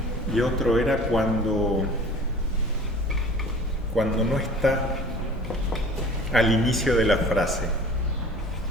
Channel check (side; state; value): both; normal; correlation 0.44